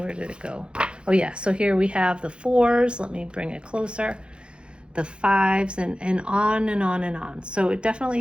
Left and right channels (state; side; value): late; left; 0.055 ms